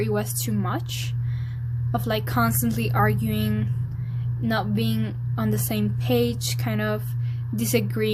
was too much of like constantly arguing, not being on the same page, kind of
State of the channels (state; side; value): identical; both; correlation 1.00